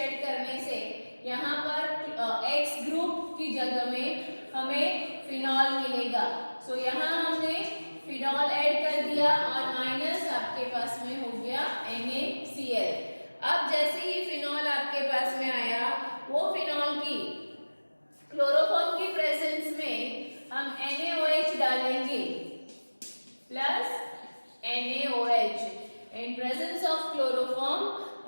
ऐड करने से. यहाँ पर X ग्रुप की जगह में हमें फिनॉल मिलेगा. यहाँ हमने फिनॉल ऐड कर दिया और माइनस आपके पास में हो गया NaCl. अब जैसे ही फिनॉल आपके पास में आया, वो फिनॉल की क्लोरोफॉर्म की प्रेजेंस में हम NaOH डालेंगे plus NaOH. In presence of chloroform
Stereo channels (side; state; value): both; inverted; correlation -1.00